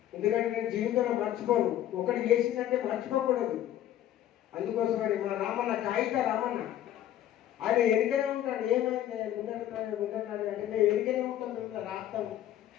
ఎందుకంటే నేను జీవితంలో మర్చిపోను. ఒకటి చేసిందంటే మర్చిపోకూడదు. అందుకోసమని మా రామన్న కాగిత రామన్న ఆయన ఎరికనే ఉంటాడు. ఏమైంది ముందన్నాడు అంటే మేము ఎరికనే ఉంటాం. మిమ్మల్ని రాస్తాం,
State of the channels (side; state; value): right; quieter; 12.1 dB